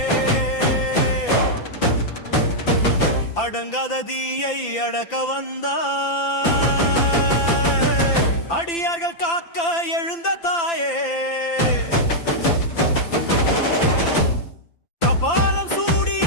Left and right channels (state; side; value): late; right; 5.9 ms